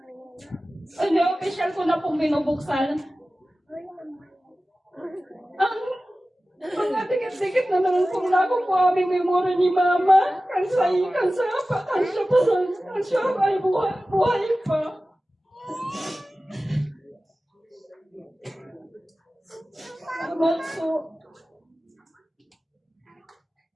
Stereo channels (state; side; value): normal; both; correlation 0.96